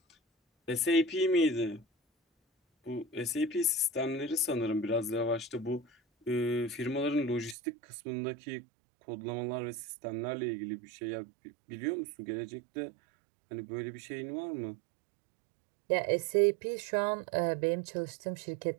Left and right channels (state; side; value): drops out; left; at 7.6 s